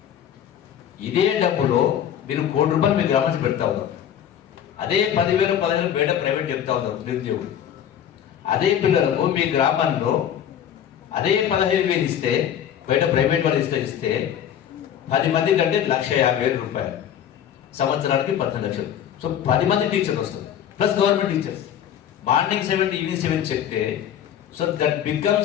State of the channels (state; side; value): quieter; right; 9.8 dB